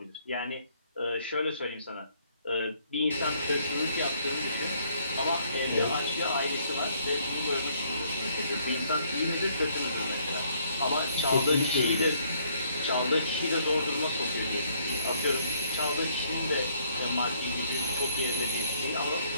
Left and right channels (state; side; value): inverted; both; correlation -0.66